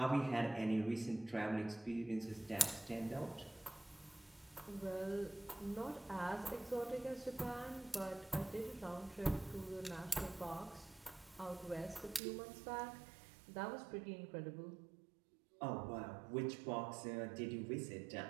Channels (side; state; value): left; drops out; at 12.2 s